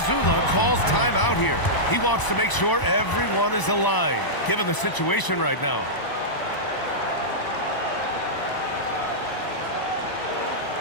calls timeout here. He wants to make sure everyone is aligned, given the situation right now.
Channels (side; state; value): right; late; 1.0 ms